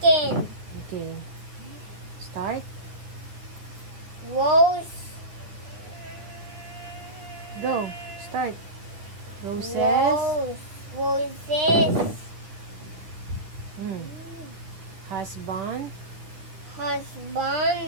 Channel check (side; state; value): left; late; 9.7 ms